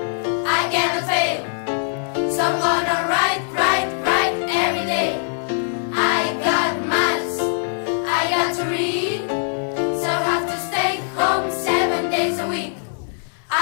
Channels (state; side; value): silent; right; digital silence